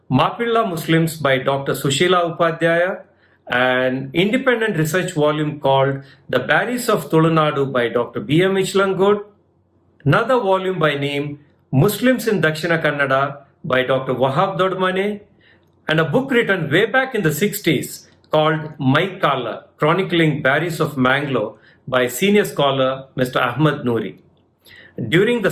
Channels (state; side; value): identical; both; correlation 1.00